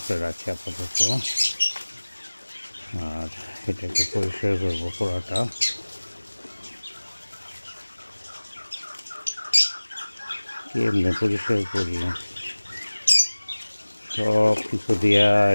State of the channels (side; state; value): both; inverted; correlation -1.00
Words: রাখি আপাতত, আর এটাকে পরিষ্কার করবো পুরাটা। কেমনে পরিষ্কার করি, সব কিছু দিয়া